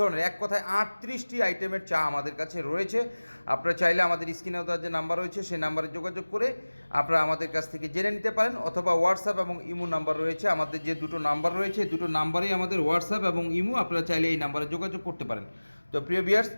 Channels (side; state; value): both; inverted; correlation -1.00